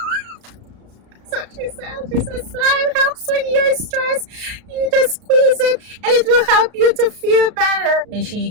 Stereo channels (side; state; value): left; late; 34 ms